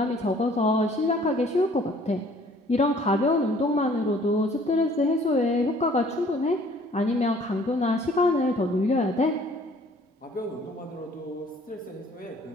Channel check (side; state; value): both; normal; correlation 0.56